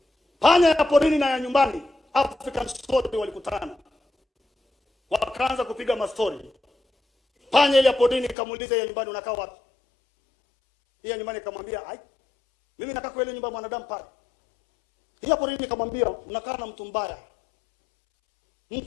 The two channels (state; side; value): drops out; right; at 8.3 s